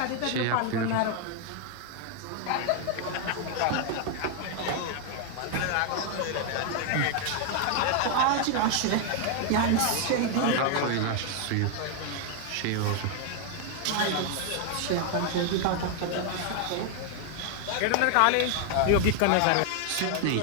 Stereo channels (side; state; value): both; different; correlation 0.00